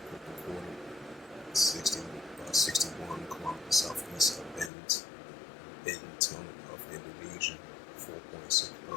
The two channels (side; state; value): right; drops out; at 4.7 s